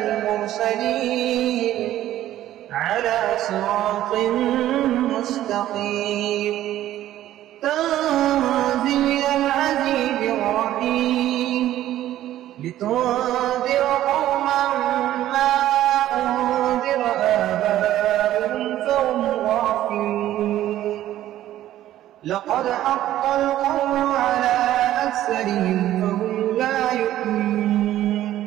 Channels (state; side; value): quieter; left; 13.3 dB